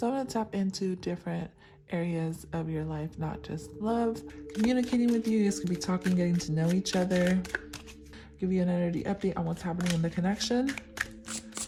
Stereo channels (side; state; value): both; identical; correlation 1.00